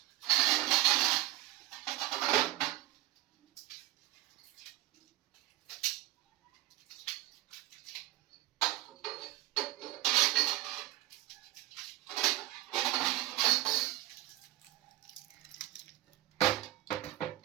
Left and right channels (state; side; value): quieter; left; 16.1 dB